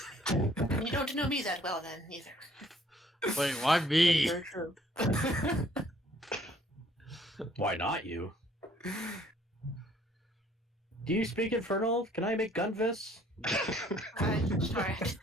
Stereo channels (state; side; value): normal; both; correlation 0.60